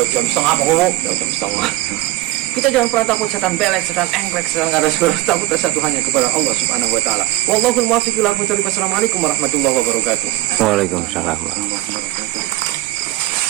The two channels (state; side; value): quieter; left; 17.2 dB